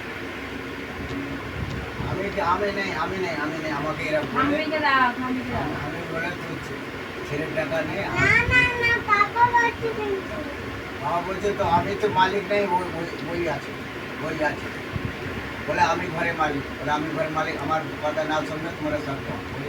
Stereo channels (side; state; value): both; identical; correlation 1.00